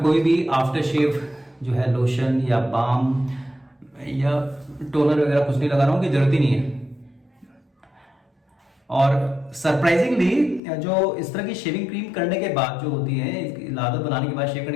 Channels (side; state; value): right; drops out; at 10.6 s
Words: कोई भी आफ्टर शेव जो है लोशन या बाम या टोनर वगैरह कुछ नहीं लगा रहा हूँ, कि जरूरत ही नहीं है। और सरप्राइजिंगली जो इस तरह की शेविंग क्रीम करने के बाद जो होती है, इसकी लादत बनाने के बाद, शेव